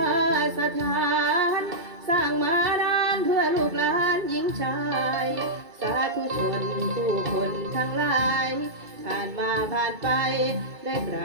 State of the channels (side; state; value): left; late; 2.3 ms